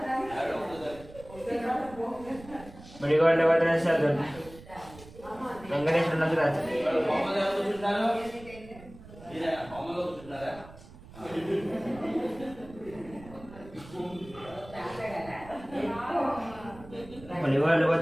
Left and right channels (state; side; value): noise; right; rumble, 18 dB below the sound